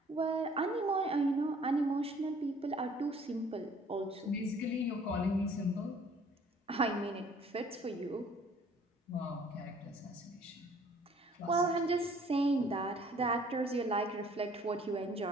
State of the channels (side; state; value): both; normal; correlation 0.56